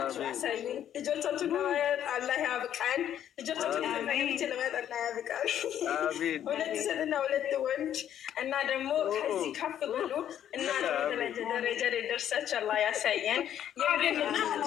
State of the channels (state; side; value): quieter; right; 10.4 dB